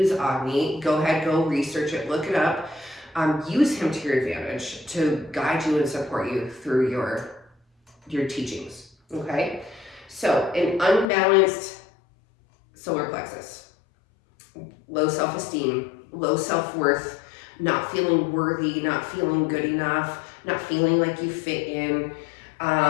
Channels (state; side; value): drops out; right; at 11.1 s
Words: Agni. Go ahead, go research it, look it up. Use him to your advantage to guide you and support you through your teachings, okay? So an unbalanced solar plexus, low self-esteem, low self-worth, not feeling worthy, not feeling good enough, not feeling like you fit in,